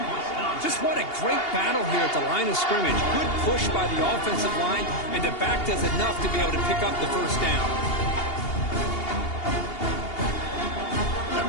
Just what a great battle here at the line of scrimmage. Good push by the offensive line, and the back does enough to be able to pick up the first down. That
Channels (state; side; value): late; right; 2.8 ms